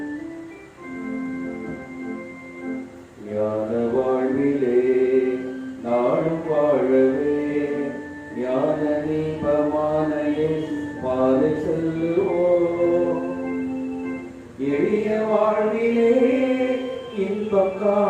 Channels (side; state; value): both; identical; correlation 1.00